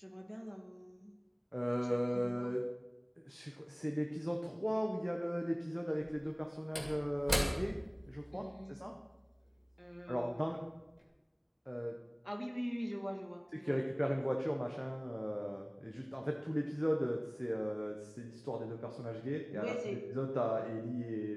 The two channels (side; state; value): both; identical; correlation 1.00